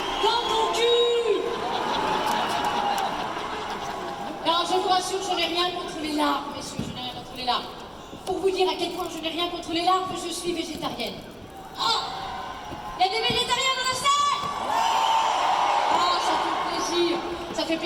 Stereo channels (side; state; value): both; identical; correlation 1.00